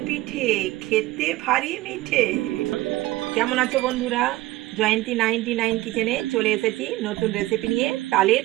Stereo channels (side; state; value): left; quieter; 17.6 dB